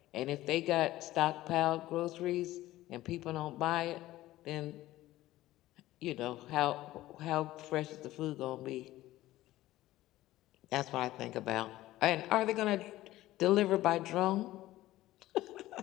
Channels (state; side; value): quieter; right; 16.0 dB